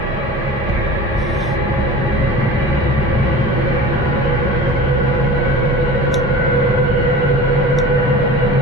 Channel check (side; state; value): both; normal; correlation 0.37